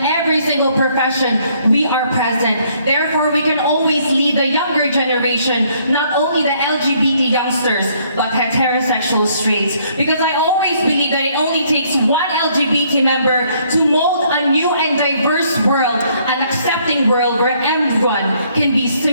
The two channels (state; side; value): inverted; both; correlation -0.66